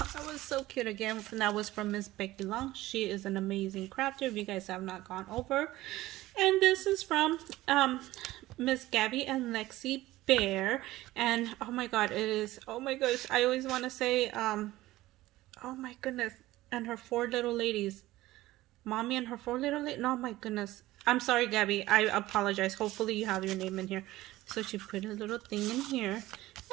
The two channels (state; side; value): quieter; left; 16.9 dB